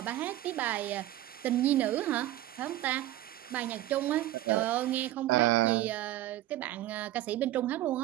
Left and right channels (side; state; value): left; quieter; 14.5 dB